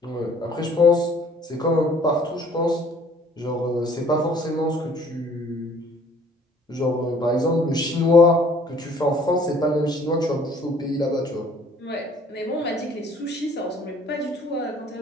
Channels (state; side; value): normal; both; correlation 0.56